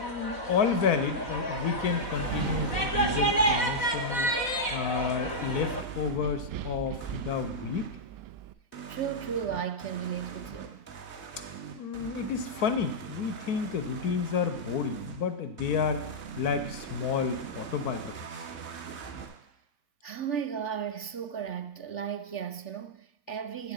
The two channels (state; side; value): late; right; 3.4 ms